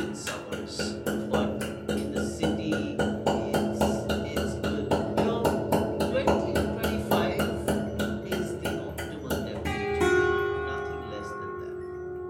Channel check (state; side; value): identical; both; correlation 1.00